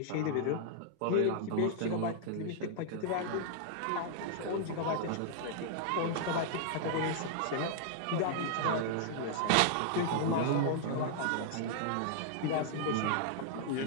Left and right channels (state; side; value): different; both; correlation -0.01